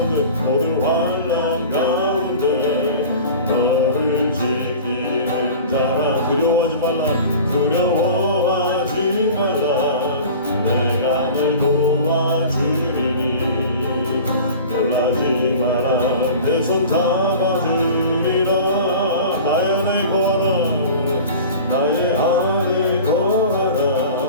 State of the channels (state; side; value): inverted; both; correlation -0.39